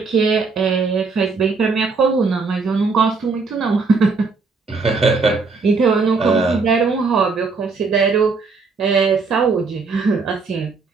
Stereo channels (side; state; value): left; quieter; 4.4 dB